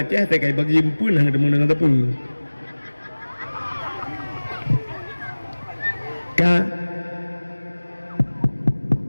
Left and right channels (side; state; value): both; inverted; correlation -1.00